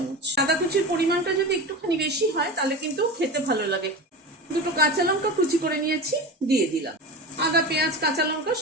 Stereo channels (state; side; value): normal; both; correlation 0.26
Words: আদা কুচির পরিমাণটা যদি একটুখানি বেশি হয় তাহলে কিন্তু খেতে ভালো লাগে। 2টো কাঁচা লঙ্কা কুচি করে নিয়েছি, দিয়ে দিলাম। আদা, পেঁয়াজ, কাঁচা লঙ্কা